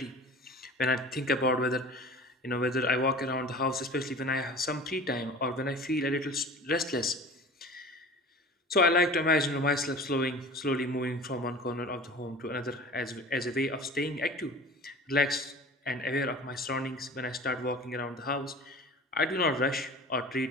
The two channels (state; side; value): normal; both; correlation 0.39